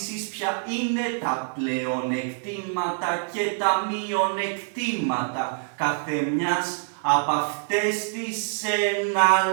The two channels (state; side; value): silent; left; 61 dB below the other